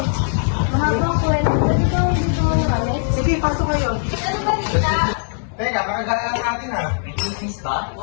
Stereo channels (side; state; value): right; silent; 63 dB below the other